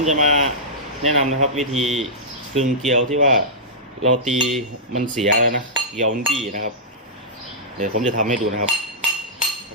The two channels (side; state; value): both; normal; correlation -0.14